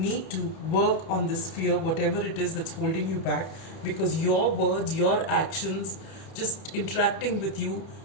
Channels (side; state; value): right; late; 31 ms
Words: to work on this fear, whatever it is that's holding you back, because your words, your actions, just interacting with you